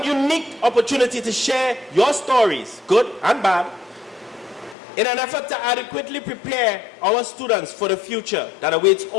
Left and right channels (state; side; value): drops out; right; at 4.8 s